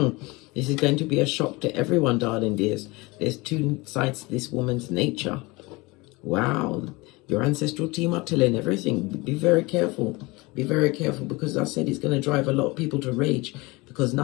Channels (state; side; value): quieter; right; 23.9 dB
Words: This is going to be a shock to everyone, darling dears. There's two sides to this woman's nature. Wow, your ancestral team are telling everything. Be very careful. Be very careful, because I said it's going to drive a lot of people to rage, because